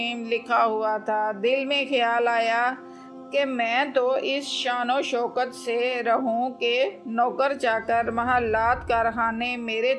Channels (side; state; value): both; identical; correlation 1.00